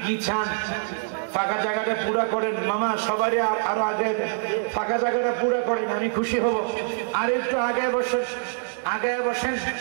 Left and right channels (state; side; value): silent; left; digital silence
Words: কি চান ফাঁকা জায়গাটা পুরা করেন মামা সবারই আরো আগে ফাঁকা জায়গাটা পুরা করেন আমি খুশি হব আর একটু আগে বসেন